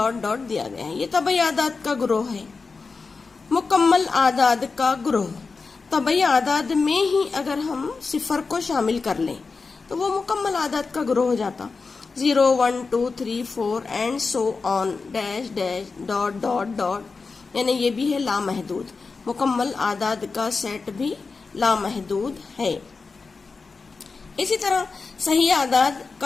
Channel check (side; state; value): right; quieter; 4.4 dB